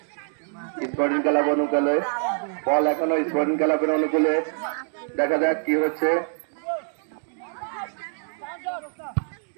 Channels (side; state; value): left; silent; digital silence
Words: স্পোর্টিং ক্লাব অনুকূলে বল এখনো স্পোর্টিং ক্লাবের অনুকূলে, দেখা যাক কি হচ্ছে।